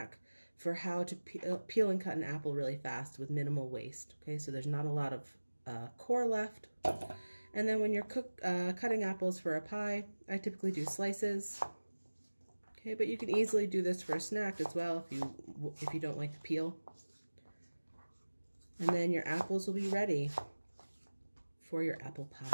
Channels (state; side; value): inverted; both; correlation -1.00